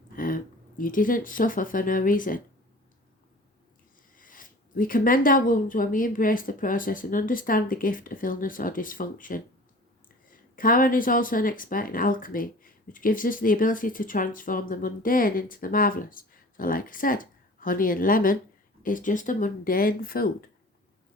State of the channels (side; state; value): both; normal; correlation 0.43